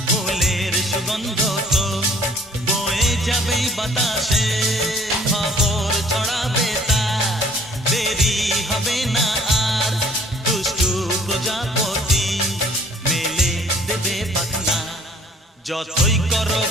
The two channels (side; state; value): both; normal; correlation 0.56